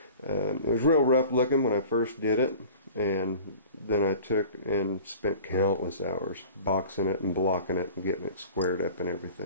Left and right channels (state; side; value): inverted; both; correlation -0.42